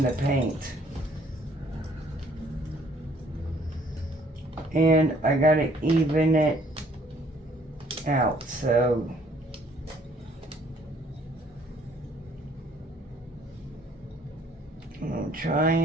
the paint. And I gotta even it out, so I'm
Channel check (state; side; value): normal; both; correlation 0.61